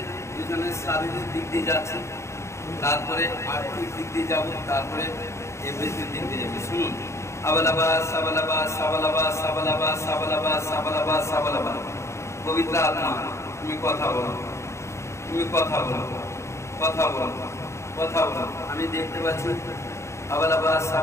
দুজনে শারীরিক দিক দিয়ে যাচ্ছে তারপরে আর্থিক দিক দিয়ে যাব তারপরে এভরিথিং দিক দিয়ে যাবে শুনুন আবালাবাস আবালাবাস আবালাবাস আবালাবাস আবালাবাস আবালাবাস আবালাবাস পবিত্র আত্মা তুমি কথা বলো তুমি কথা বলো কথা বলো কথা বলো আমি দেখতে পাচ্ছি abalabas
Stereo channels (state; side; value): late; right; 0.14 ms